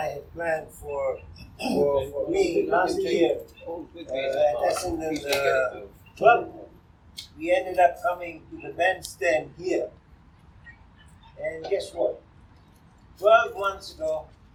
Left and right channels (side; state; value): both; identical; correlation 1.00